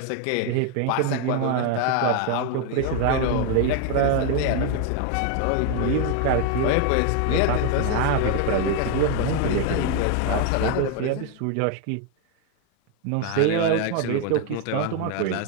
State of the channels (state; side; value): different; both; correlation 0.01